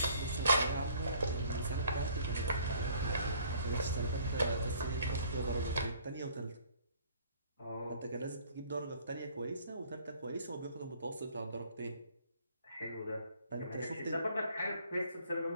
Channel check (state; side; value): inverted; both; correlation -0.57